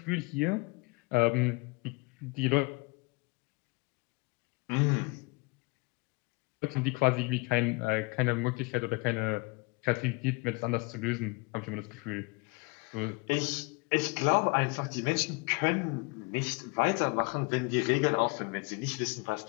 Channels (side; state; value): right; quieter; 27.7 dB